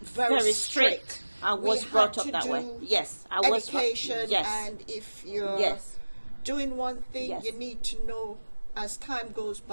strict. I was brought up that way. Yes, I was. Education, yes. And if you're doing one thing, you need to know as time goes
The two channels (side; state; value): both; inverted; correlation -1.00